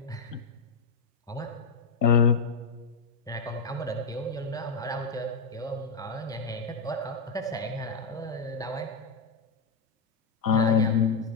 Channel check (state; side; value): quieter; right; 4.5 dB